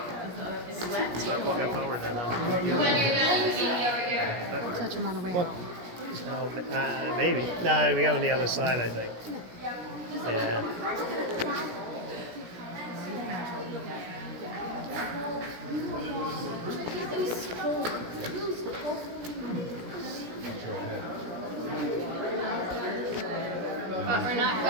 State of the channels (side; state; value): left; late; 17 ms